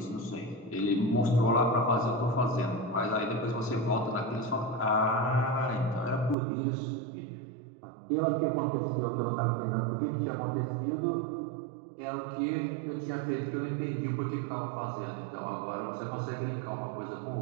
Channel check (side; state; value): left; drops out; at 6.4 s